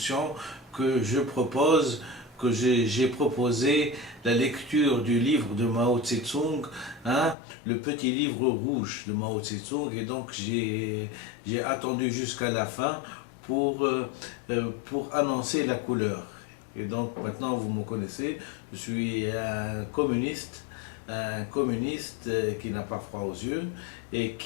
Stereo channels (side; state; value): right; drops out; at 7.4 s